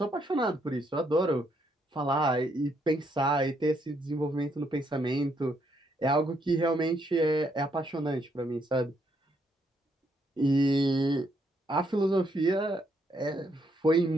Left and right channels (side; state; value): both; normal; correlation 0.74